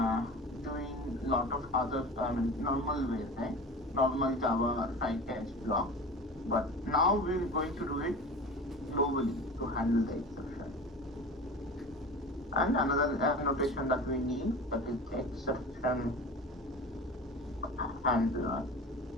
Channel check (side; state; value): both; normal; correlation 0.34